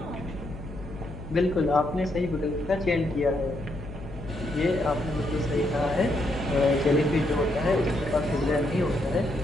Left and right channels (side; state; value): left; noise; hum, 13 dB below the sound